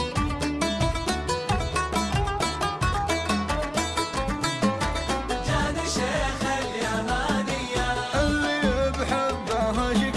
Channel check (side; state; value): both; identical; correlation 1.00